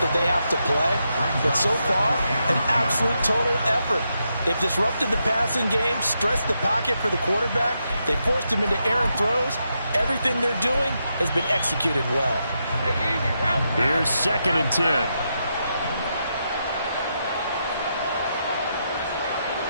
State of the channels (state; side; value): inverted; both; correlation -0.83